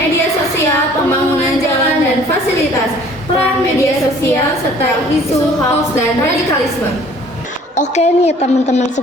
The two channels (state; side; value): normal; both; correlation 0.53